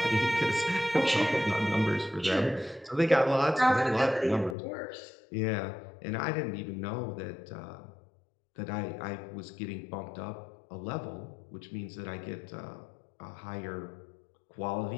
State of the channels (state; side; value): drops out; right; at 4.5 s